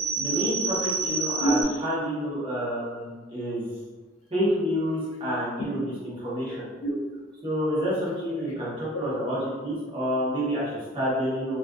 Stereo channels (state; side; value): normal; both; correlation 0.43